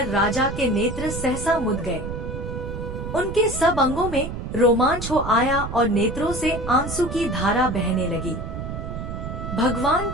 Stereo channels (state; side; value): noise; right; rumble, 7 dB below the sound